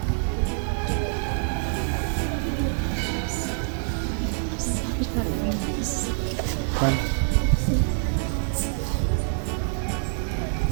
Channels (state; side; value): silent; left; 58 dB below the other